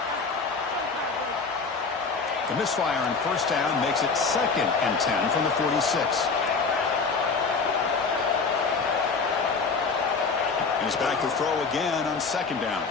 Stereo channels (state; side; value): quieter; right; 4.7 dB